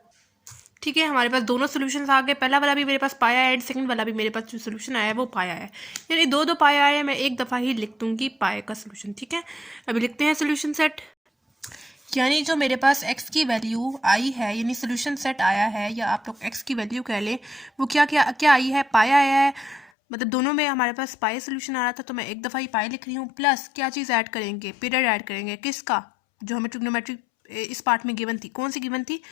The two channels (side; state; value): right; drops out; at 19.9 s